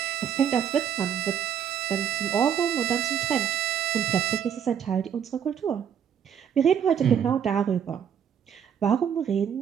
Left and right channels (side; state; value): left; quieter; 8.5 dB